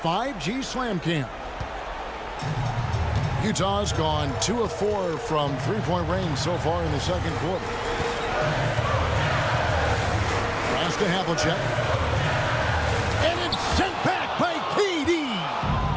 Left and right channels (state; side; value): identical; both; correlation 1.00